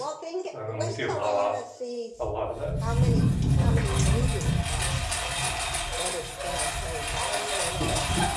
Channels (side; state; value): both; identical; correlation 1.00